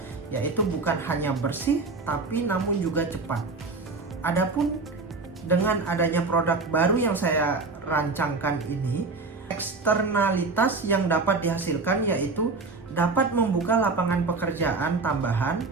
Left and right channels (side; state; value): left; quieter; 3.9 dB